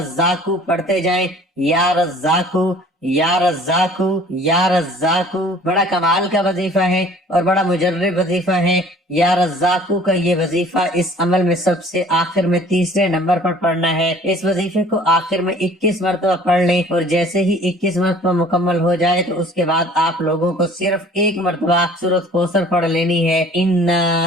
پڑھتے جائیں یا رزاقو یا رزاقو یا رزاقو۔ بڑا کمال کا وظیفہ ہے اور بڑا مجرب وظیفہ ہے۔ یا رزاقو کا یہ وظیفہ اس عمل میں سب سے آخر میں تیسرے نمبر پر پڑھنا ہے۔ اس وظیفے کو آخر میں 21 مرتبہ پڑھ لیں اور جیسے ہی 21 مرتبہ مکمل ہو جائے تو اس کے بعد آپ لوگوں کو صرف ایک مرتبہ سورۃ کوثر پڑھ لینی ہے۔ انا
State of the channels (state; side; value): normal; both; correlation 0.51